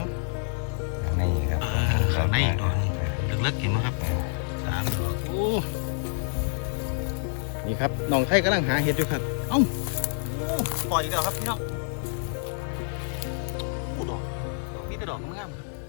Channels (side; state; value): right; silent; 60 dB below the other